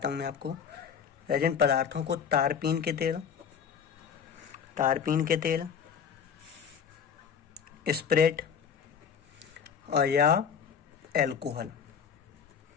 हूँ मैं आपको। रेजिन पदार्थों को तारपीन के तेल, स्प्रेट और या एल्कोहल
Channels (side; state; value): right; quieter; 7.2 dB